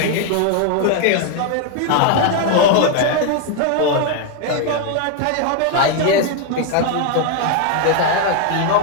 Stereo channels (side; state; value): both; different; correlation 0.01